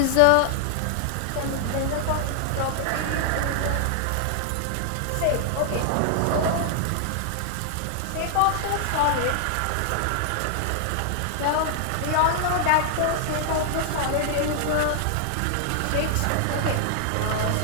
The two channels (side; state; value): both; different; correlation -0.01